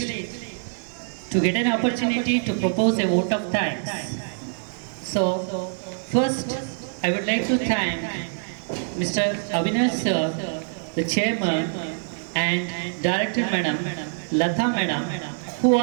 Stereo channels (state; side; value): silent; left; 62 dB below the other